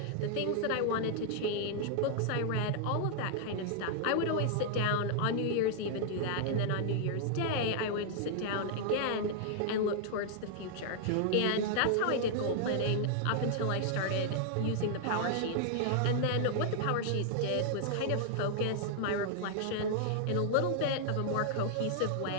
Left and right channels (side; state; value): both; different; correlation -0.01